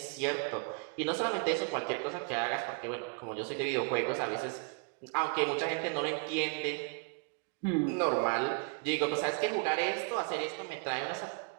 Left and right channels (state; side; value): quieter; left; 38.1 dB